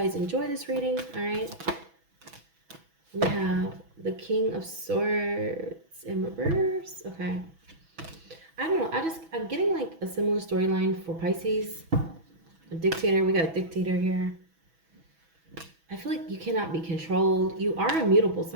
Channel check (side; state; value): left; late; 6.1 ms